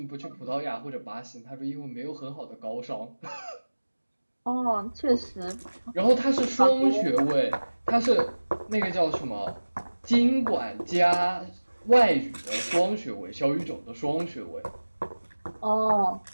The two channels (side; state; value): both; inverted; correlation -1.00